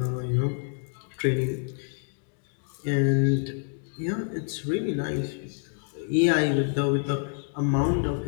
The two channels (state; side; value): silent; right; 60 dB below the other